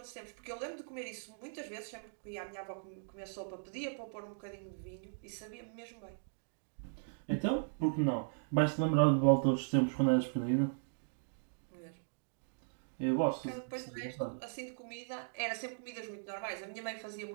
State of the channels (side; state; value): left; silent; digital silence